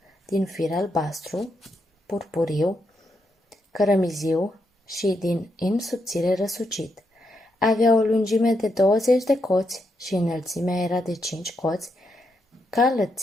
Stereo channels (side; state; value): both; normal; correlation 0.81